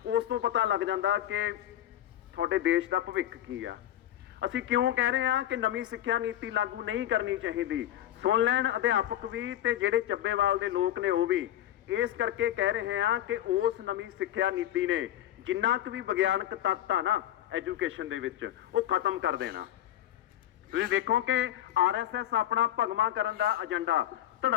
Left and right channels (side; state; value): right; quieter; 12.4 dB